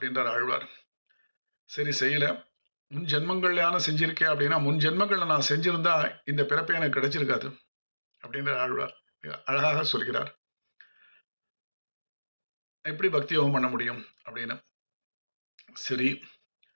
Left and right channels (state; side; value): inverted; both; correlation -1.00